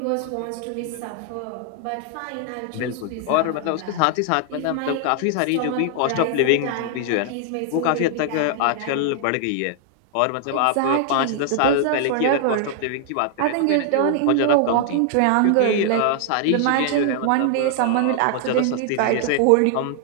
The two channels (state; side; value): different; both; correlation 0.00